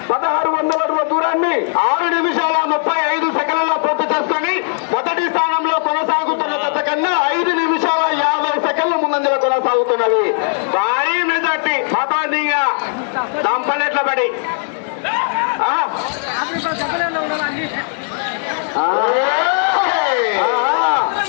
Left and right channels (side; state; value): right; silent; 56 dB below the other